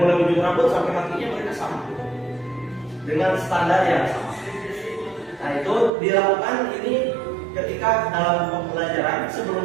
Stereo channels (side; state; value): left; drops out; at 5.9 s